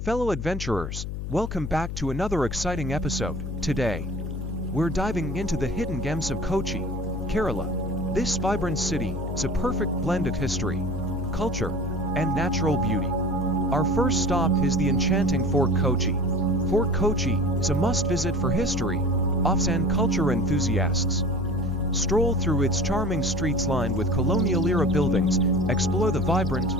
adventurers, welcome back to another exciting episode. Today, we're diving into the hidden gems of Kochi, Kerala. This vibrant city is a perfect blend of history, culture, and natural beauty. Our first stop is the enchanting Fort Kochi. Fort Kochi is a must-visit for history, offs and culture enthusiasts. Stroll through its charming streets lined with colonial-era buildings, explore the vibrant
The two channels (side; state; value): left; noise; hum, 5 dB below the sound